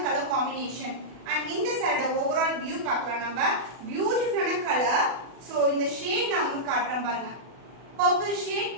கலர் காம்பினேஷன். அண்ட் இந்த சாரியோட ஓவரால் வியூ பார்க்கலாம் நம்ம. பியூட்டிஃபுல்லான கலர். ஸோ இந்த ஷேட் நான் உங்களுக்கு காட்டுறேன் பாருங்க. Purple shade,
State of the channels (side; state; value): left; late; 40 ms